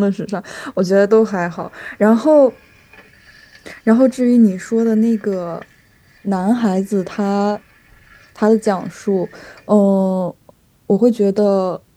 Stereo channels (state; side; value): identical; both; correlation 1.00